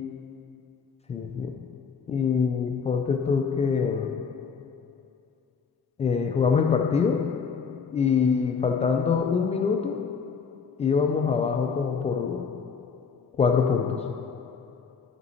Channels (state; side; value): quieter; right; 5.8 dB